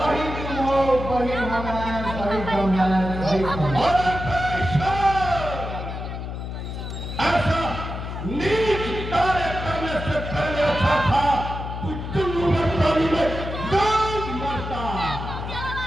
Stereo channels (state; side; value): noise; left; hum, 6 dB below the sound